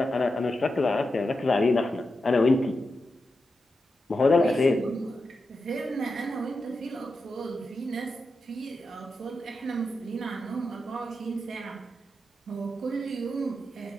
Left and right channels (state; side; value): normal; both; correlation 0.89